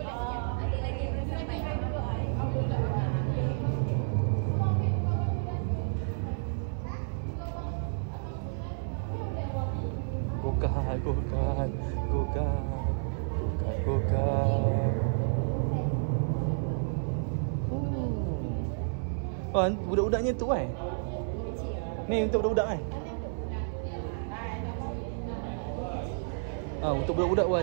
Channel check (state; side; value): silent; left; 56 dB below the other